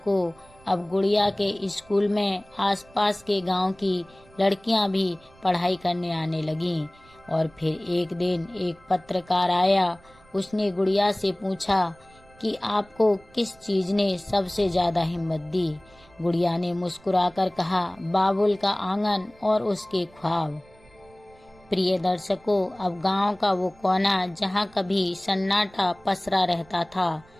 अब गुड़िया के स्कूल में आसपास के गांव की लड़कियां भी पढ़ाई करने आने लगीं। और फिर एक दिन एक पत्रकार आया। उसने गुड़िया से पूछा कि आपको किस चीज ने सबसे ज्यादा हिम्मत दी। गुड़िया ने मुस्कुराकर कहा, बाबुल का आंगन और उसके ख्वाब। प्रिय दर्शकों, अब गांव का वो कोना जहां कभी सन्नाटा पसरा रहता था,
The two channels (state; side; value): noise; right; rumble, 27 dB below the sound